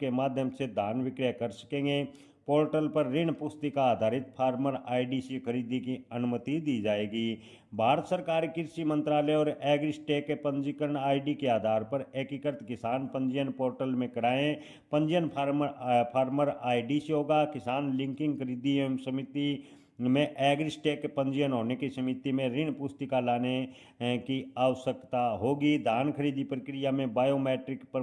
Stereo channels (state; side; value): identical; both; correlation 1.00